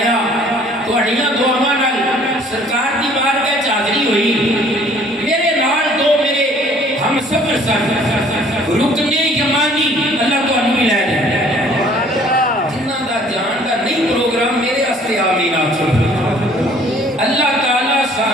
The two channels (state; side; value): normal; both; correlation 0.56